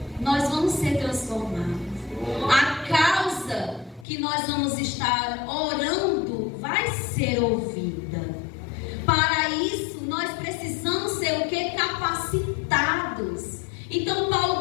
Nós vamos ser transformados. A causa que nós vamos estar orando vai ser ouvida. Para isso, nós precisamos ser o que? Capacitados. Então,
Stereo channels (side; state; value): right; drops out; at 4.0 s